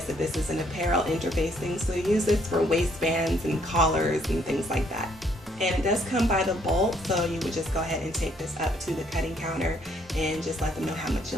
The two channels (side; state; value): both; normal; correlation 0.67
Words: that this is an apparel interfacing. So you use this for waistbands and collars and things like that. And it does come by the bolt, so you would just go ahead and take this up to the cutting counter and just let them know how much